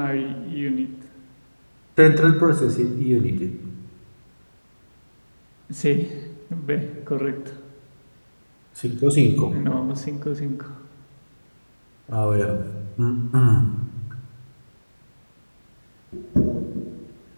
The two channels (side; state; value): both; inverted; correlation -1.00